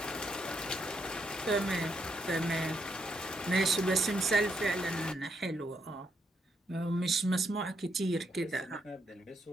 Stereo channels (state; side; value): normal; both; correlation 0.78